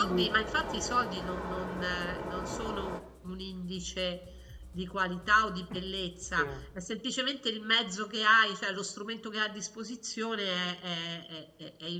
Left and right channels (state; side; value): identical; both; correlation 1.00